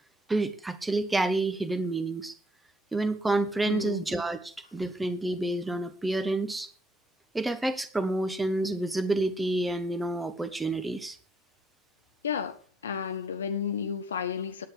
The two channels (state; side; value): normal; both; correlation 0.69